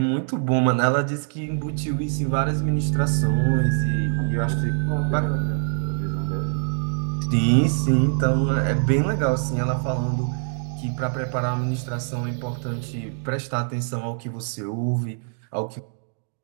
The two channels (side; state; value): left; silent; digital silence